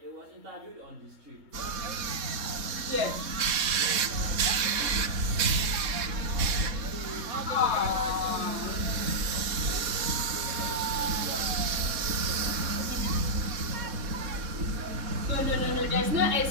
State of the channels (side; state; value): left; late; 3.6 ms